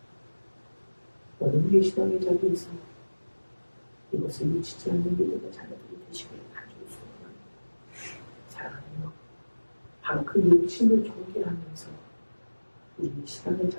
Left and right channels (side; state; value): both; inverted; correlation -1.00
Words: 오늘 우리의 신앙의 자리에서 이것을 놓치지 않는 믿음의 자녀들이 되시기를 간절히 소원합니다. 사랑하며 바로 그 욕심을 경계하면서 우리의 신앙의